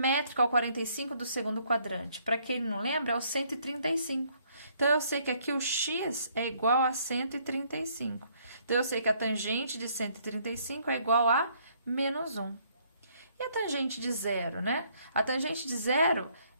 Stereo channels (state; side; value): inverted; both; correlation -0.66